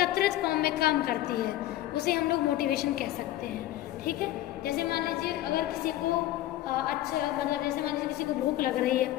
फॉर्म में काम करती है, उसे हम लोग मोटिवेशन कह सकते हैं, ठीक है। जैसे मान लीजिए अगर किसी को जैसे मान लीजिए किसी को भूख लग रही है,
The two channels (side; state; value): right; quieter; 14.7 dB